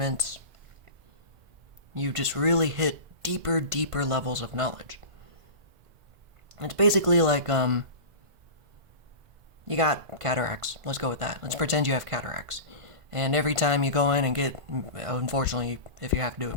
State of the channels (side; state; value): left; late; 1.5 ms